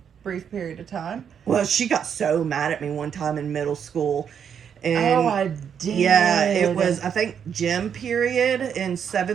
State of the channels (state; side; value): quieter; left; 7.8 dB